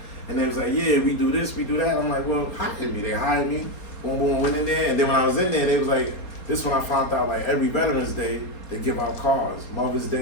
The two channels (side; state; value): right; late; 4.3 ms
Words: and they was like, yeah, we do this, we do that. I'm like, well, hire me. They hired me. Boom, boom, went in there. And then when I was in there, they was like, this when I found out, like, every Veterans Day, they give out cars. Mother's